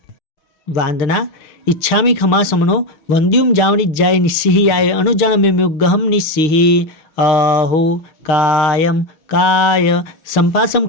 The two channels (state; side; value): late; right; 6.6 ms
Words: वांदना इच्छामि खमा समनो वंद्युम जावनिज्जाय निस्सिहियाय अनुजानम्योगहम निस्सिहि अहो कायम काय संपासम